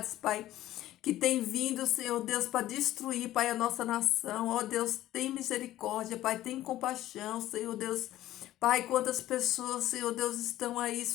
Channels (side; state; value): right; quieter; 14.4 dB